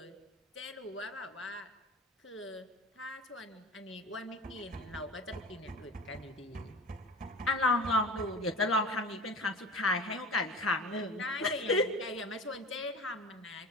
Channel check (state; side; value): normal; both; correlation 0.34